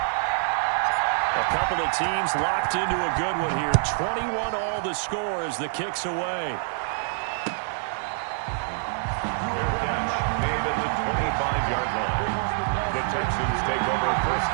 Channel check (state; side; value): silent; left; digital silence